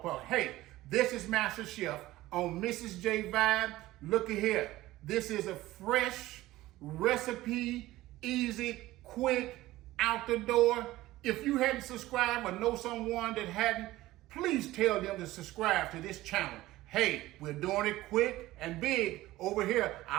park. Hey, this is Master Chef on Mrs. J Vibe. Look at here. This is a fresh recipe, easy, quick, out the door. If you hadn't subscribed or know someone that hadn't, please tell them to subscribe to this channel. Hey, we're doing it quick and big over here.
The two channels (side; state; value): left; quieter; 16.9 dB